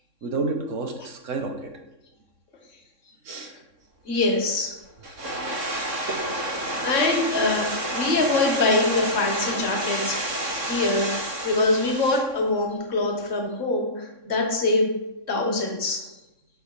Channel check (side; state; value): left; late; 3.6 ms